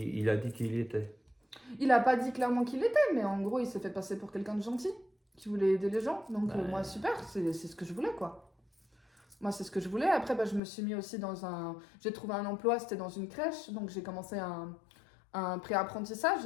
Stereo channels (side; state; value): right; drops out; at 10.6 s